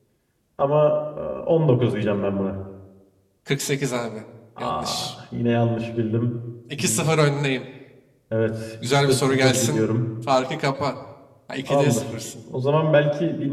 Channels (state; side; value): identical; both; correlation 1.00